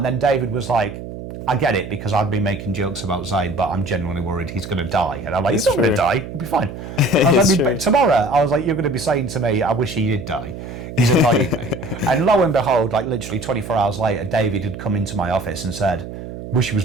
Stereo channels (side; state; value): right; noise; hum, 10 dB below the sound